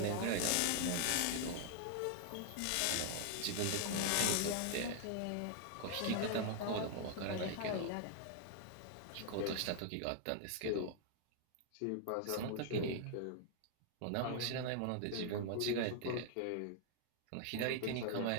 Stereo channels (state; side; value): different; both; correlation 0.00